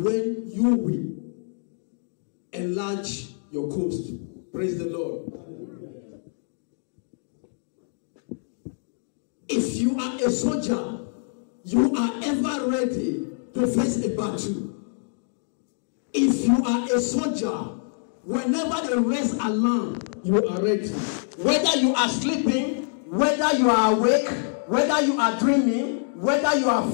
you will enlarge your coast. Praise the Lord. If you are a soldier, you are ever ready to face a battle. If you are a soldier, whenever the raise alarm, you are ready. Whether you are sleeping, whether you are awake, whether you are dreaming, whether you are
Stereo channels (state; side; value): silent; right; digital silence